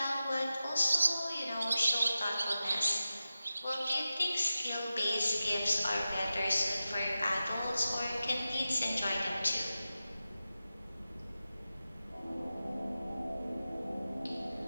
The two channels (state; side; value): inverted; both; correlation -0.93